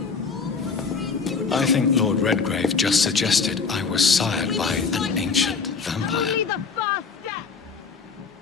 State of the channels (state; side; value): quieter; right; 5.1 dB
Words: I think Lord Redgrave just suggested I was sired by an ancient vampire. Only the first step.